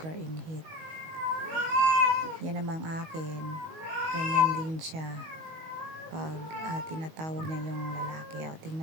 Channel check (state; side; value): late; left; 19 ms